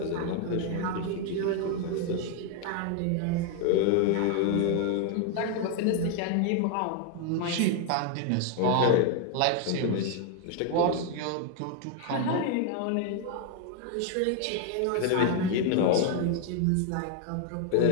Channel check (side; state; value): both; different; correlation 0.00